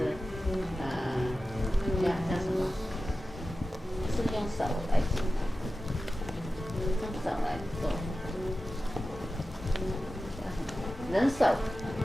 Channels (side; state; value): both; normal; correlation 0.94